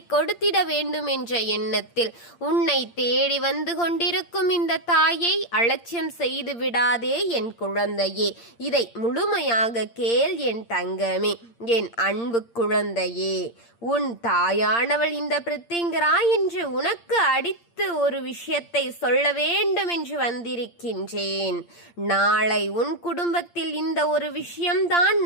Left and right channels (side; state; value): right; late; 8.7 ms